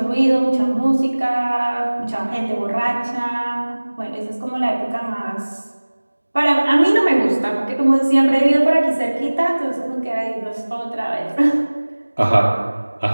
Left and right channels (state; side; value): inverted; both; correlation -1.00